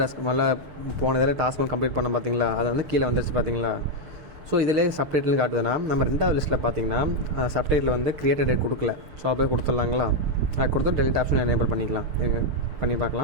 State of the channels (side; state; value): left; late; 6.6 ms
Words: மேலே போன இதில் டாஸ்க் ஒன்று கம்ப்ளீட் பண்ண பார்த்தீங்களா, அதை வந்து கீழே வந்துருச்சு பார்த்தீங்களா. ஸோ இதிலே சப்டைட்டில் காட்டுதுன்னா நம்ம 2வது லிஸ்ட்டில் பார்த்தீங்கன்னா சப்டைட்டில் வந்து கிரியேட்டட் டேட் கொடுக்கல. ஸோ அதை போய் கொடுத்துடலாங்களா, அதை கொடுத்து டெலிட் ஆப்ஷன் எனேபிள் பண்ணிக்கலாம். பண்ணி